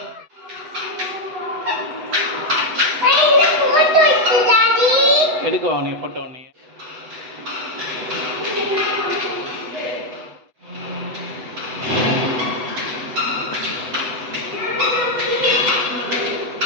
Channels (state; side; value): late; left; 8.0 ms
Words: எடுக்கவா நீ ஃபோட்டோ நீ?